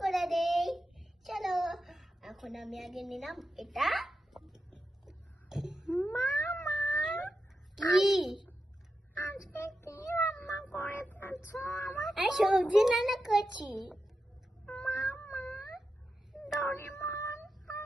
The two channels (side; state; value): both; normal; correlation 0.89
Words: করে দেই, চলো। এখন আমি আগে নিলাম এটা। মামা কি আজকে কি রান্না করেছো? আমি সবজি রান্না করছি। মামা, ডরিমন আর